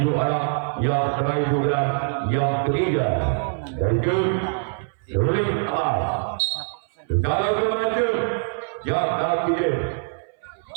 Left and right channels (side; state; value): left; silent; 59 dB below the other